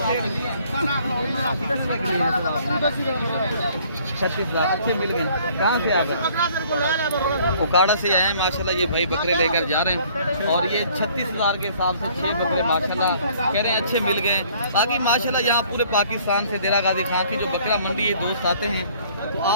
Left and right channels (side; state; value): both; inverted; correlation -0.58